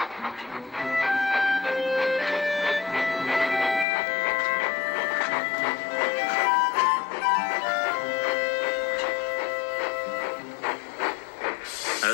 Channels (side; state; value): right; drops out; at 3.9 s